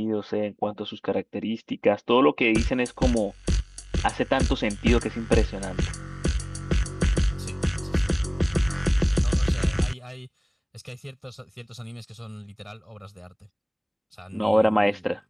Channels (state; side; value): identical; both; correlation 1.00